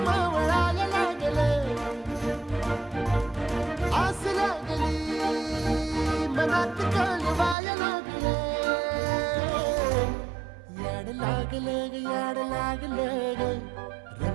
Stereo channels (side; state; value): left; drops out; at 7.6 s